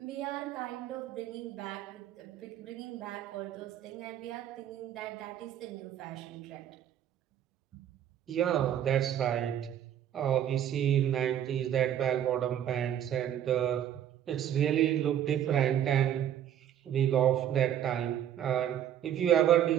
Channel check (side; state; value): left; quieter; 10.4 dB